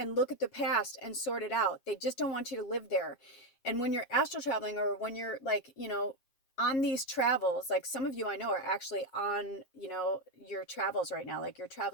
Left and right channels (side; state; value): right; late; 7.5 ms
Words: at the past and sort it out. They just don't want you to live there. And when you're astral traveling, or when you're like, you know, on these travels, like some of you I know are actually on, you know, your travels right now, like you're